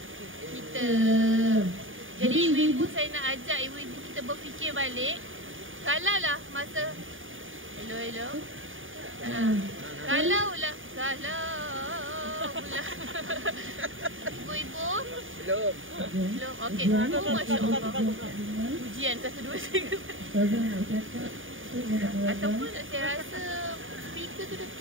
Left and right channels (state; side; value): late; left; 0.58 ms